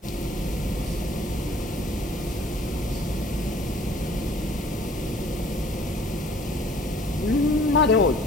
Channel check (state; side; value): normal; both; correlation 0.54